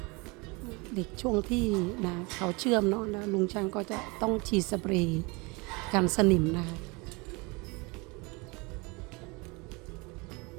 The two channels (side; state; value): left; quieter; 27.3 dB